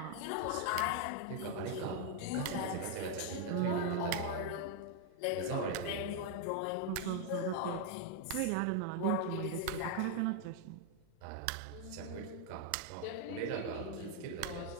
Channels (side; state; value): both; different; correlation 0.00